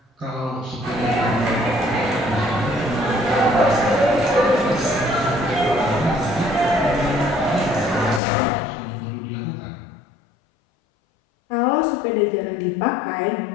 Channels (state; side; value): drops out; right; at 8.2 s